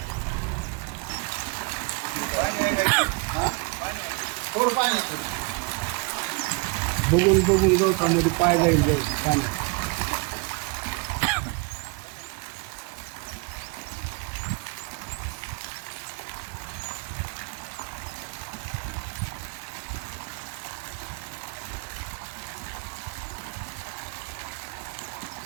बघून बघून गवतामध्ये पाय जाईल पाणी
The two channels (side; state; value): left; quieter; 30.0 dB